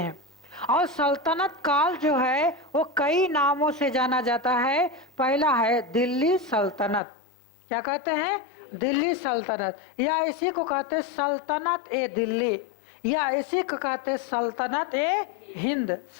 हैं। और सल्तनत काल जो है वो कई नामों से जाना जाता है। पहला है दिल्ली सल्तनत। क्या कहते हैं? दिल्ली सल्तनत, या इसी को कहते हैं सल्तनत ए दिल्ली, या इसी को कहते हैं सल्तनत ए हिंद।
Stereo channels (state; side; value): drops out; right; at 7.0 s